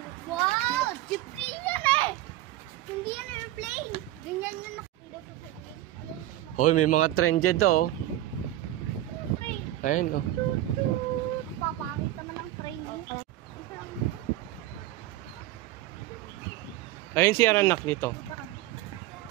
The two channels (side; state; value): left; quieter; 14.8 dB